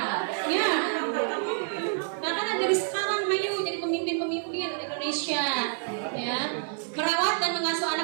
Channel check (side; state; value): left; silent; 58 dB below the other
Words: Ya. Makanya dari sekarang ayo jadi pemimpin-pemimpin Indonesia. Ya. Merawat dan mengasuh